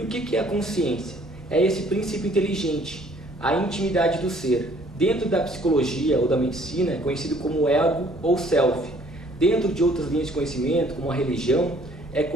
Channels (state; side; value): normal; both; correlation 0.59